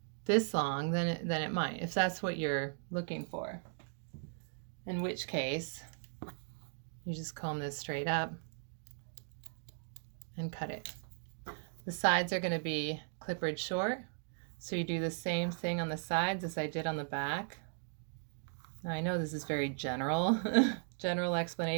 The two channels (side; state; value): left; silent; 53 dB below the other